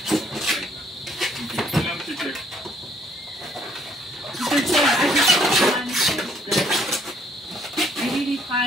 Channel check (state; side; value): normal; both; correlation 0.65